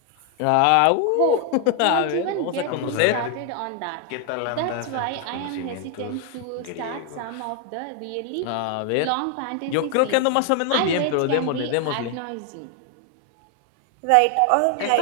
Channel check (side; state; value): both; different; correlation 0.00